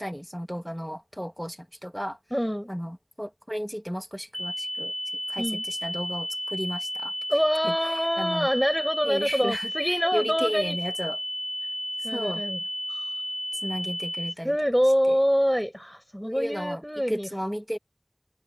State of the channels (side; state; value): both; identical; correlation 1.00